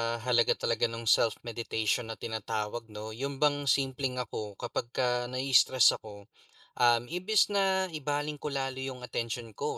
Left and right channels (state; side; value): identical; both; correlation 1.00